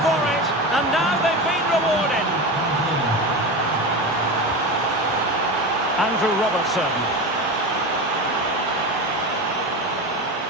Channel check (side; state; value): both; normal; correlation 0.24